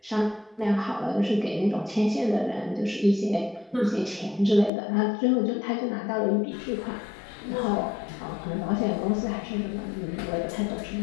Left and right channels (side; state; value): right; drops out; at 4.7 s